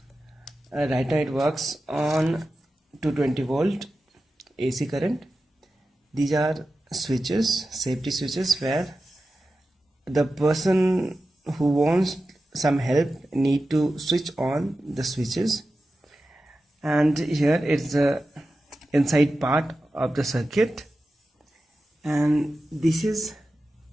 Right now it works on 220 volt AC current. These are switches, safety switches, where the person who wants some help need to switch on the switches. And here it's the inside part of the circuit, and this is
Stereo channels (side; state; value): both; normal; correlation 0.93